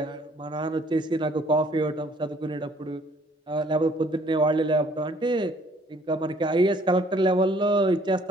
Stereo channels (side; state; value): both; normal; correlation 0.60